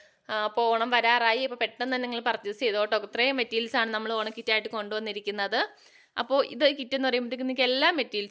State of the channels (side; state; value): both; identical; correlation 1.00